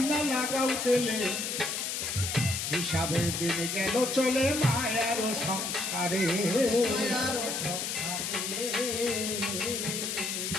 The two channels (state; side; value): noise; left; hiss, 2 dB below the sound